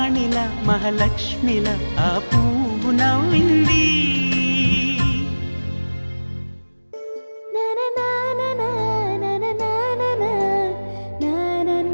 మహాలక్ష్మిలా ఆ పువ్వు నవ్వింది.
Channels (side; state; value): both; inverted; correlation -1.00